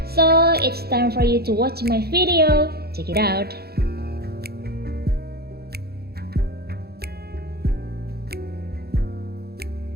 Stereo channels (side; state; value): left; late; 0.46 ms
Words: So, it's time for you to watch my video. Check it out.